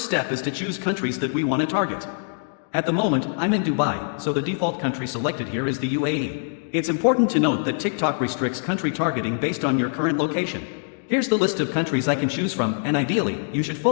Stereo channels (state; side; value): silent; right; digital silence